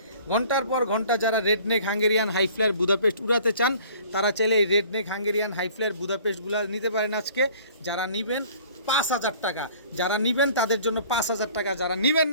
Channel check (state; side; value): inverted; both; correlation -0.51